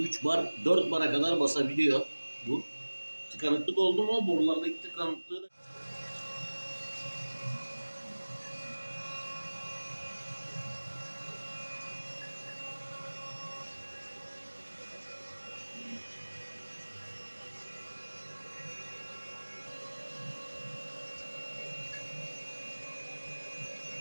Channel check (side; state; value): both; inverted; correlation -1.00